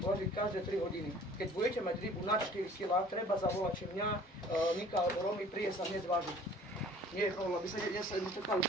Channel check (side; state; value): both; normal; correlation 0.50